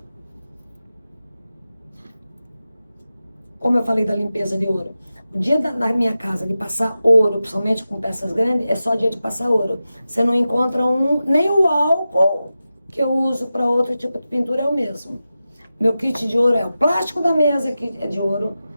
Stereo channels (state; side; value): inverted; both; correlation -0.93